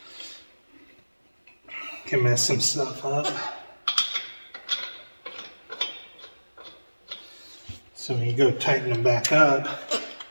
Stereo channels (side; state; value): both; inverted; correlation -1.00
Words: mess some stuff up. So when you go tighten them back up